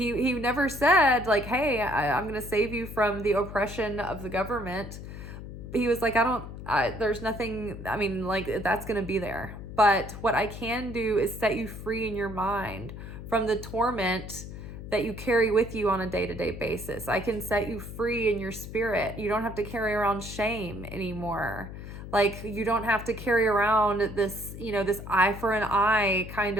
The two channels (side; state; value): left; noise; hum, 11 dB below the sound